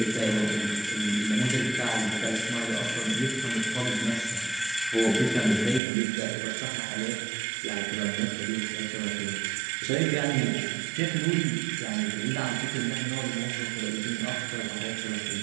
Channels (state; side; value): drops out; left; at 5.8 s